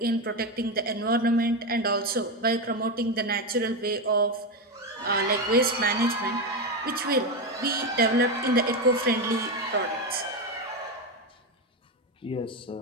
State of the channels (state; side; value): normal; both; correlation 0.12